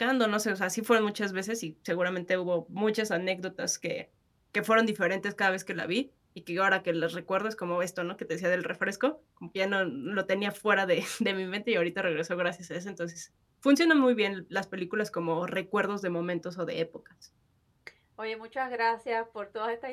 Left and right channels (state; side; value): identical; both; correlation 1.00